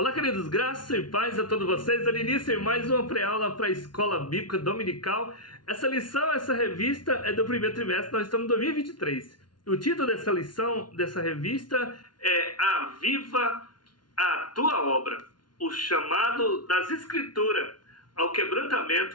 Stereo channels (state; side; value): late; right; 0.70 ms